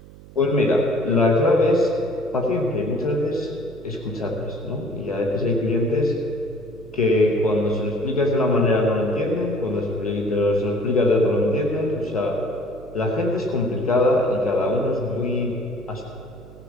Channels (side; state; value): right; noise; hum, 20 dB below the sound